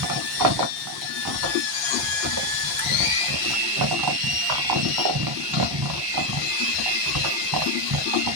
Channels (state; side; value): normal; both; correlation 0.07